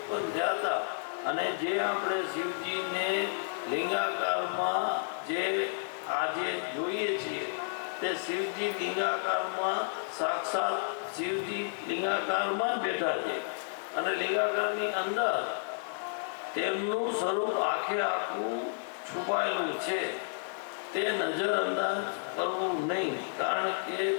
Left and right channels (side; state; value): right; silent; digital silence